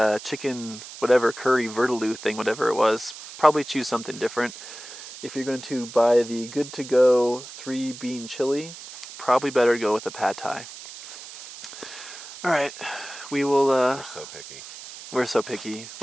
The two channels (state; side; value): noise; right; hiss, 14 dB below the sound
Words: chicken, whatever, curry, vindaloo thing, whatever it was, probably choose something different. If you're going to buy the good-to-go 3-bean chili, probably better to go with the pad thai. All right, we will. We're so picky. We're so picky.